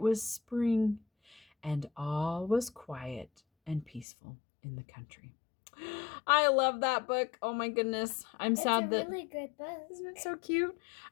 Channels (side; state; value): right; drops out; at 4.0 s